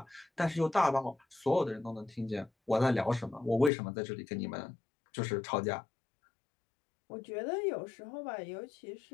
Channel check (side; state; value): right; drops out; at 3.7 s